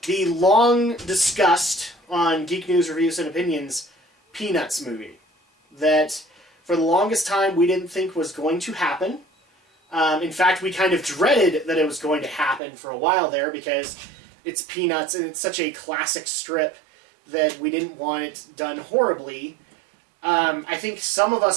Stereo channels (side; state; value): left; drops out; at 12.6 s